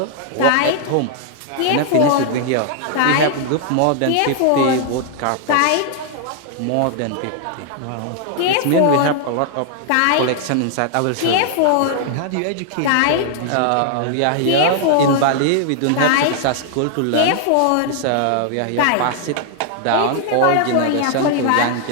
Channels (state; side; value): different; both; correlation 0.00